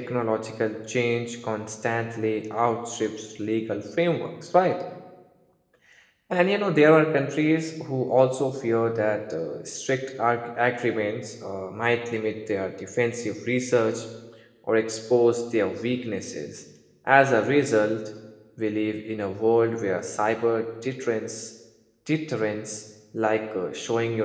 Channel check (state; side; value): identical; both; correlation 1.00